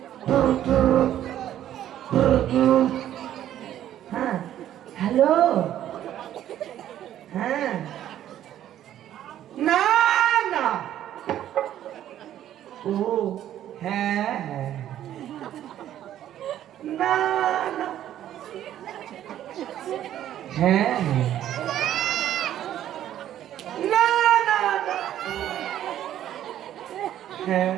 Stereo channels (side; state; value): left; quieter; 11.7 dB